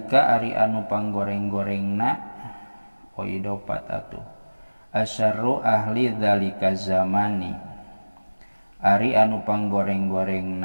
ari anu panggoreng-gorengna oidopat atuh. Asyarru ahli dzalika zamani ari anu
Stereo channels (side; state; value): both; inverted; correlation -1.00